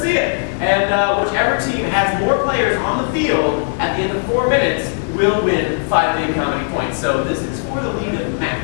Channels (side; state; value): right; silent; 56 dB below the other